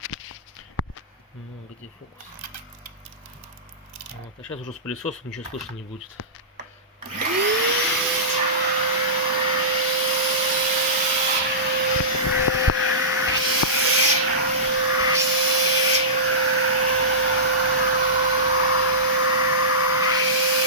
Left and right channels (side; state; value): both; normal; correlation -0.20